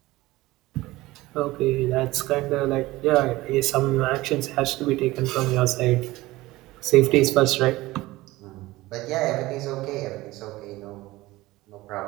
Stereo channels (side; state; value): left; quieter; 18.8 dB